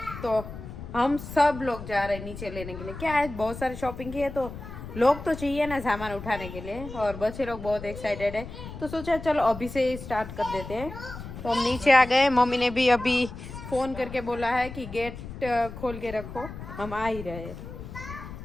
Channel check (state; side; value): noise; left; rumble, 11 dB below the sound